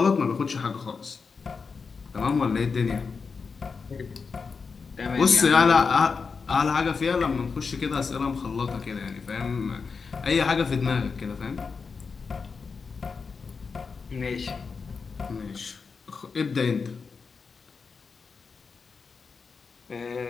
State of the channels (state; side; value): quieter; right; 5.1 dB